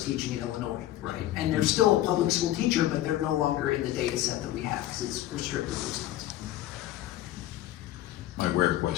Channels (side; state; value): right; quieter; 14.2 dB